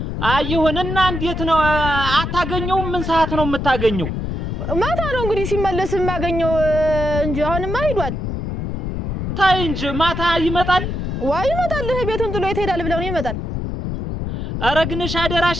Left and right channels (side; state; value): left; noise; rumble, 3 dB below the sound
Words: አይሁንና እንዴት ነው አታገኘው? ምን ሰዓት ነው የምታገኘው? ማታ ነው እንግዲህ ሲመለስ የማገኘው እንጂ አሁንማ ሄዷል። ታይ እንጂ ማታ ይመጣል። ይመጣል። ቤቱን ጥሎ ይሄዳል ብለው ነው ይመጣል። አረግንሽ አደራሽ